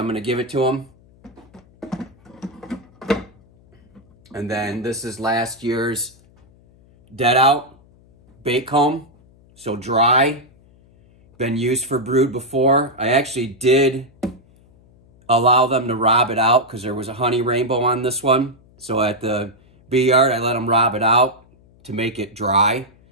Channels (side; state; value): left; noise; hum, 29 dB below the sound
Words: going to give it to them. And then this is last year's dead out bait comb. So dry, been used for brood before. I actually did allow them to rob it out because there was a honey rainbow on this one. So at the bee yard, I let them rob it out to make it dry.